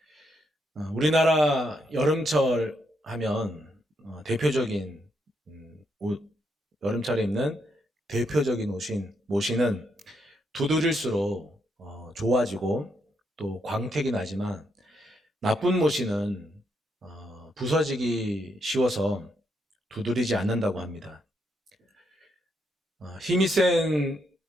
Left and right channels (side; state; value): both; normal; correlation 0.78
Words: 우리나라 여름철 하면 대표적인 여름철에 입는 대표적인 모시는 두드릴수록 좋아지고 또 광택이 나지만 나쁜 모시는 부서지기 쉬워서 두드리지 않는다고 합니다. 힘이